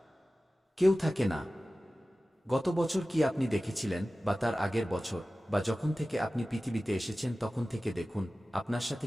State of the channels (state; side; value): normal; both; correlation 0.96